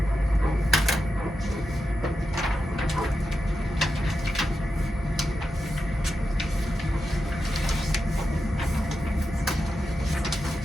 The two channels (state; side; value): normal; both; correlation 0.89